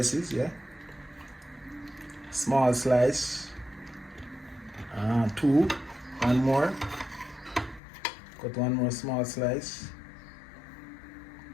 yeah? Small slice. Two, one more. Cut one more small slice.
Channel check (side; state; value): right; drops out; at 7.8 s